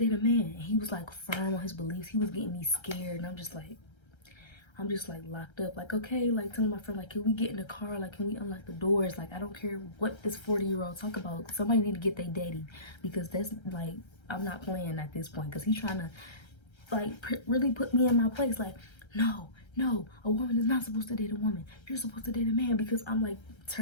a man. And he was like firm on his beliefs. He was getting me scared. And I'm just like locked up. Like, okay, like telling my friend, like, can we get in the car? Like, can we unlock the doors? Like, I don't care what this 40-year-old talk about. Somebody need to get their daddy, because that's like, I'm not playing at this point, because he's trying to like really put me in my place. Like, no, a woman is not supposed to date a woman. You're supposed to date a man. Because I'm like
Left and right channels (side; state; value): right; late; 1.3 ms